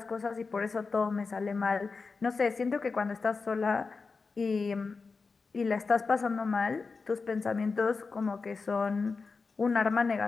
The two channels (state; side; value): quieter; right; 4.5 dB